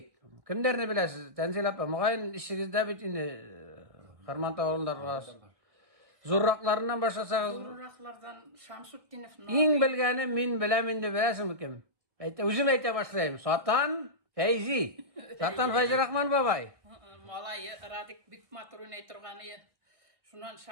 Kimlerini bilesiz? Tenzil apa, mugaýyn işigizde bit indi Kırmantaw awulundagy zurraklarından başlasağız. Zurraklardan Şamsutdinov. İň bilgeni min bilemin de bilesin kim? Özüm ayta başlaýym. Satan Feyzi. Satan Feyzi Rahman babay. Malay Radik Bikmaturun aytırgany. Şundan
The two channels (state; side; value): late; left; 1.7 ms